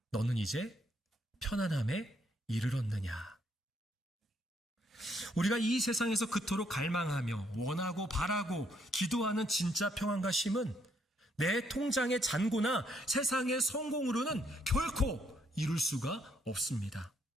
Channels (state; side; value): normal; both; correlation 0.72